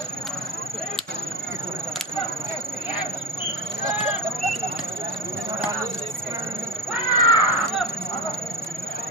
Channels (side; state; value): both; normal; correlation 0.20